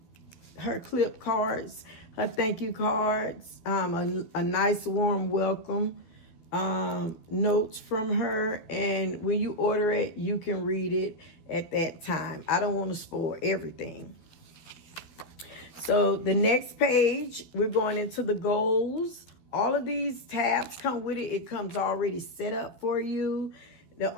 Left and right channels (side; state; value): right; late; 12 ms